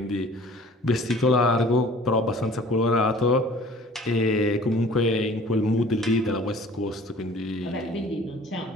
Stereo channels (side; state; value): both; normal; correlation 0.48